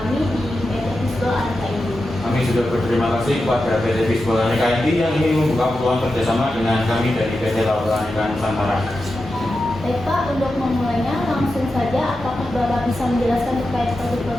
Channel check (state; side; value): normal; both; correlation 0.90